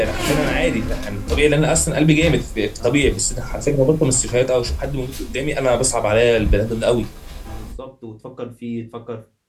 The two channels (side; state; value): both; identical; correlation 1.00